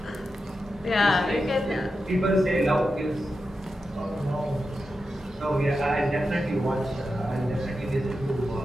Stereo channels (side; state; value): both; normal; correlation 0.90